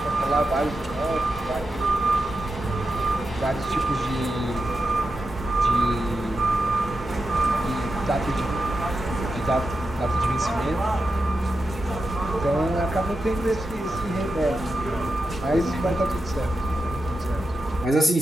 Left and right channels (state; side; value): normal; both; correlation 0.89